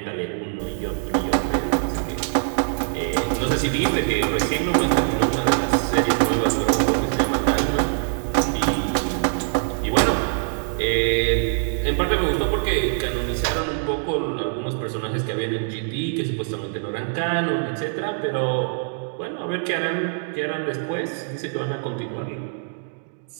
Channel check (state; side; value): silent; left; digital silence